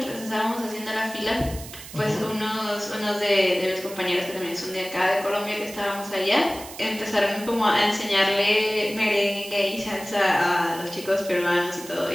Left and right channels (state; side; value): noise; right; hiss, 14 dB below the sound